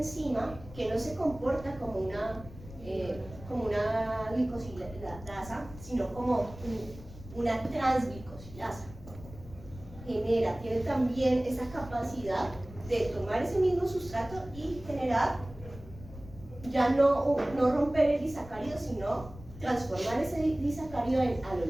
que no se comporta como una glicosilasa, sino como una transglicosilasa. Tiene también esa capacidad de tomar ese mismo sustrato y generar, ya no romper el disacárido, sino transformar ese disacárido en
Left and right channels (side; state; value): left; noise; rumble, 16 dB below the sound